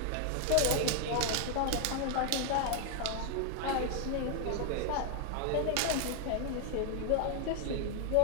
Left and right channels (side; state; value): both; different; correlation 0.00